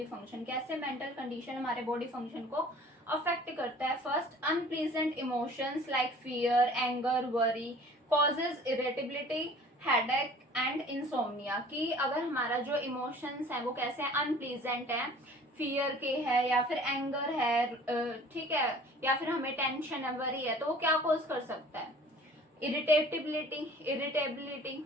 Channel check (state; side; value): normal; both; correlation 0.49